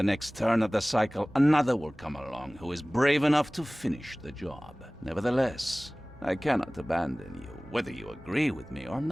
next turn of the cycle, another will come along who is brave enough to finish the job. Nevertheless, I cannot abandon you, whether you agree with me or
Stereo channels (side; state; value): right; noise; hum, 29 dB below the sound